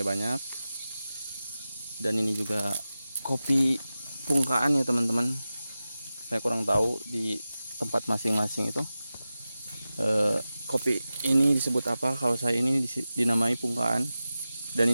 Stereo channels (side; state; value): both; inverted; correlation -0.95